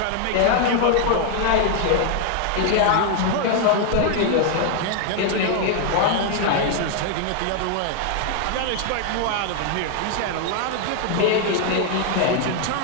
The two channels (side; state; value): both; different; correlation 0.00